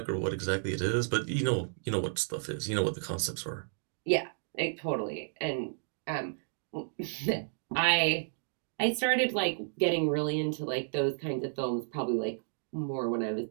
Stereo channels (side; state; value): left; silent; digital silence